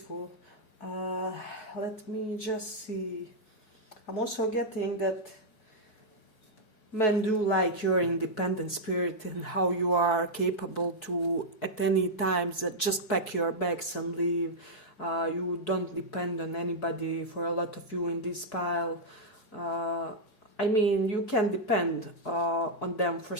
Let me just see. I'm also getting that men do like your independent spirit and how you are capable to, at any times, just pack your bags and leave. You don't depend on anybody. For a lot of you in this pile, I mean, you can depend on them for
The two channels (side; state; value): right; late; 4.7 ms